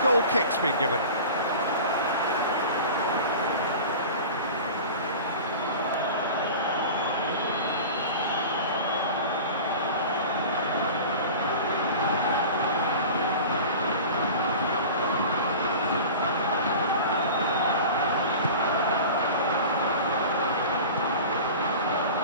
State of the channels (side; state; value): both; inverted; correlation -0.36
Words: Goal kick's been given.